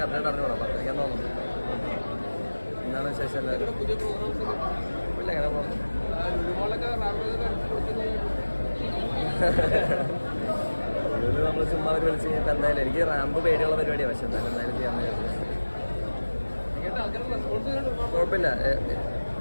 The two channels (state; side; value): inverted; both; correlation -1.00